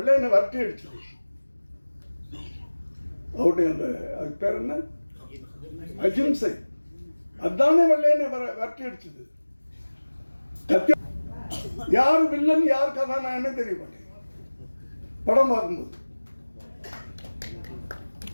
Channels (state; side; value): inverted; both; correlation -1.00